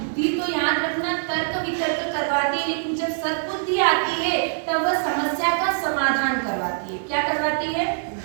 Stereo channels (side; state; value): left; silent; digital silence